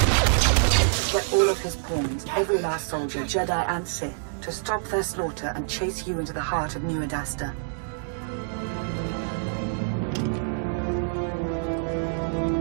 Get all of his pawns, every last soldier, Jedi and Sith, to stop their slaughter and chase you into the heart of New Adasta.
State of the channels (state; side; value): silent; left; digital silence